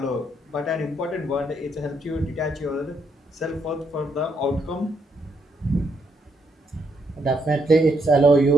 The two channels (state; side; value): normal; both; correlation 0.75